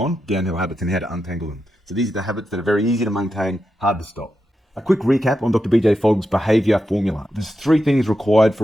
downhill habits and how to untangle them. So these are the habits that are very easy to maintain, hard to stop. A quick recap on Dr. BJ Fogg's behavior formula. There's 3 things required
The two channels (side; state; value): both; normal; correlation 0.87